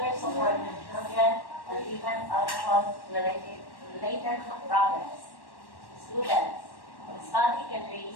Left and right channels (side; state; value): right; late; 1.1 ms